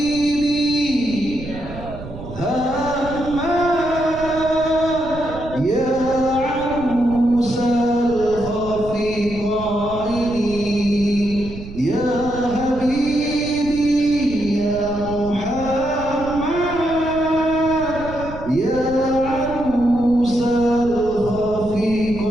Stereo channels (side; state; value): right; noise; rumble, 12 dB below the sound